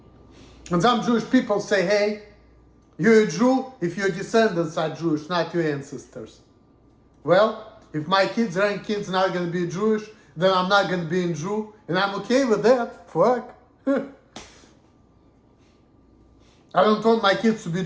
And some Jewish people say, hey, you're a Jew if your descendants are Jewish, not your ancestors. Well, if my kids, grandkids not going to be Jewish, then I'm not going to be a Jew, and I'm okay with that. Fuck. I don't want my kids to be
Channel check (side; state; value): both; identical; correlation 1.00